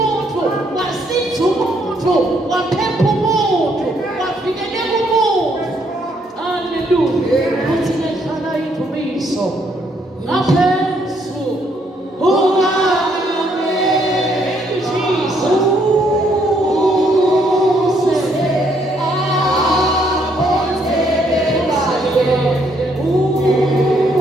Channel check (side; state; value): both; normal; correlation 0.70